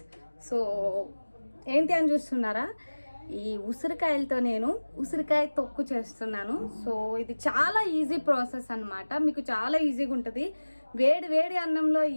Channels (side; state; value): both; inverted; correlation -1.00